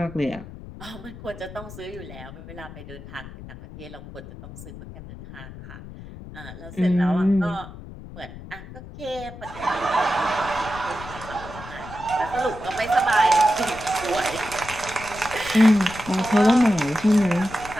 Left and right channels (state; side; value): noise; left; rumble, 14 dB below the sound